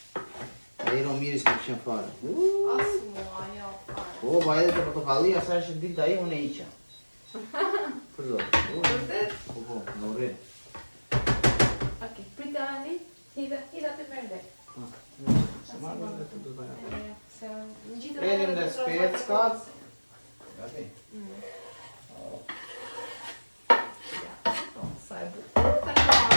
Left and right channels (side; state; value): both; inverted; correlation -1.00